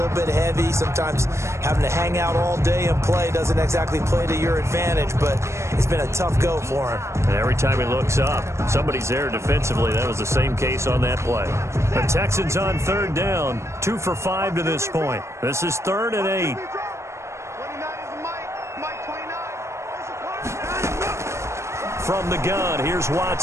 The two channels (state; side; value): late; left; 0.13 ms